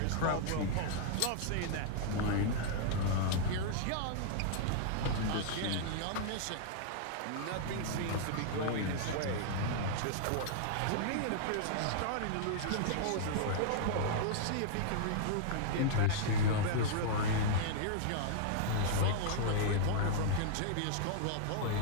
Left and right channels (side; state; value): both; different; correlation -0.01